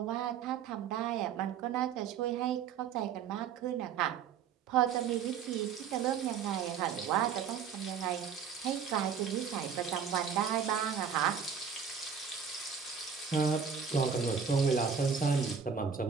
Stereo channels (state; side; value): quieter; left; 6.9 dB